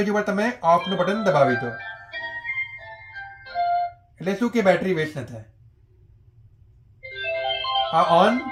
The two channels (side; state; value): both; identical; correlation 1.00